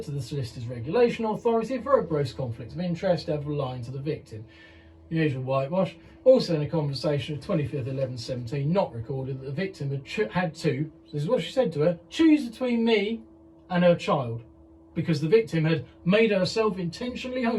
Solicitor's Regulation Authority for a gross conflict of interest and for lying to the victim. The usual whitewash. Also in a conversation of 25th 11/17, not recorded, that the victim had to, this is what she said to her, choose between me and her child, because the victim had made herself intentionally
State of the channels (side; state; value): both; identical; correlation 1.00